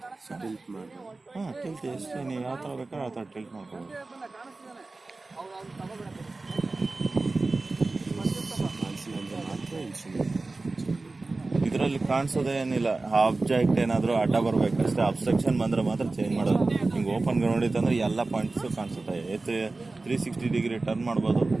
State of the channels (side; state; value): left; quieter; 3.4 dB